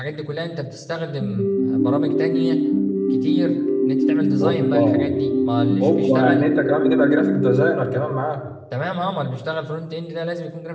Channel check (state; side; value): identical; both; correlation 1.00